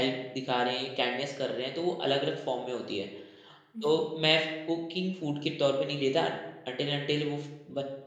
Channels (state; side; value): identical; both; correlation 1.00